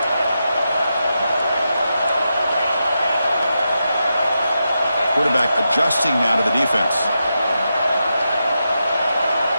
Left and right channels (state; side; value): inverted; both; correlation -0.87